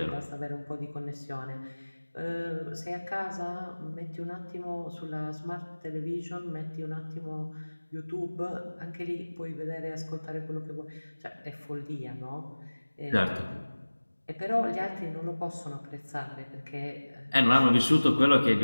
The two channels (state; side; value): inverted; both; correlation -1.00